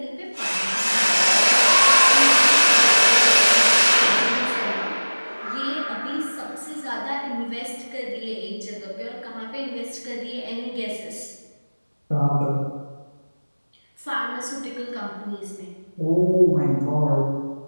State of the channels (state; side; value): inverted; both; correlation -1.00